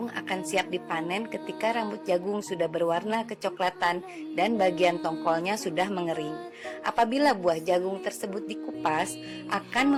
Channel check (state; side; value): identical; both; correlation 1.00